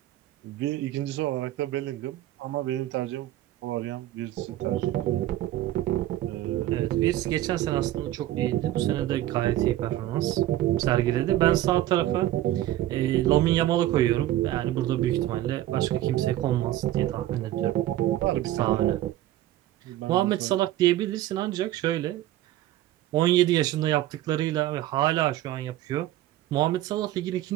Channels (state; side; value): quieter; left; 14.2 dB